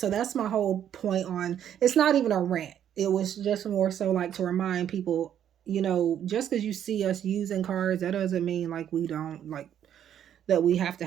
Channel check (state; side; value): quieter; left; 9.9 dB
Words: that's my whole point on, it's not even a rant. It was just more so like to remind people, just because you see us using cards, that doesn't mean like we don't, like that we have to